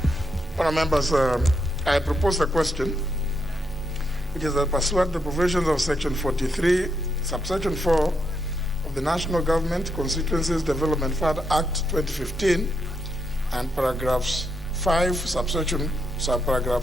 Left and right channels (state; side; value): normal; both; correlation 0.80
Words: Honourable members, I propose a question, which is that pursuant to the provisions of Section 43, subsection 4 of the National Government Constituencies Development Fund Act 2015, and paragraphs 5,